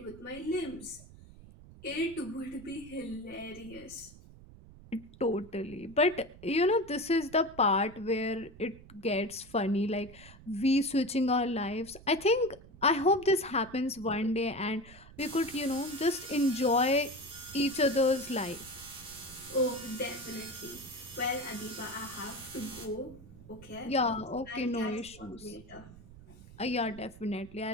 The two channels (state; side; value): noise; right; rumble, 19 dB below the sound